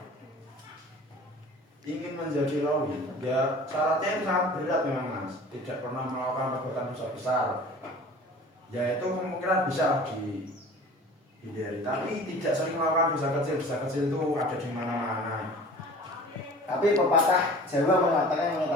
ingin menjadi rawi, ya syaratnya itu sangat berat memang, Mas. Tidak pernah melakukan perbuatan dosa besar. Ya itu kemungkinan bisa dihindari. Tapi tidak sering melakukan dosa kecil. Dosa kecil itu ada di mana-mana. Tapi pepatah Jawa mengatakan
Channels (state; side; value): normal; both; correlation 0.43